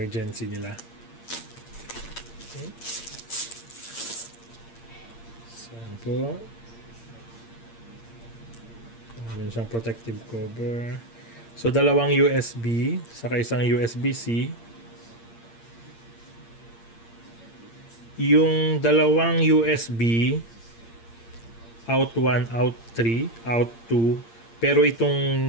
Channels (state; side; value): late; right; 8.7 ms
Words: nila. Okay. Saan po? Meron siyang protective cover. So dalawang USB saka isang USB-C. Yung dalawang USB, out 1, out 3, out 2. Pero